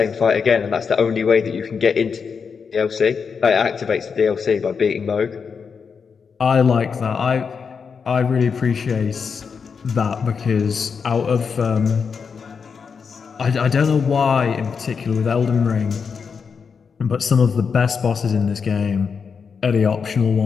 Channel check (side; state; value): right; quieter; 5.9 dB